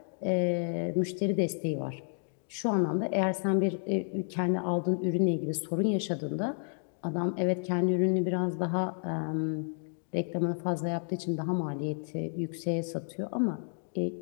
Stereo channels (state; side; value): silent; right; digital silence